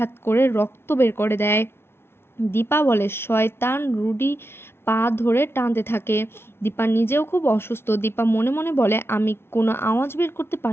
করে রক্ত বের করে দেয়। দীপা বলে শয়তান। রুডি পা ধরে টানতে থাকে। দীপা নিজেও খুব অসুস্থ। দীপা মনে মনে বলে আমি কোনো আওয়াজ বের করতে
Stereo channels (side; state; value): right; late; 0.12 ms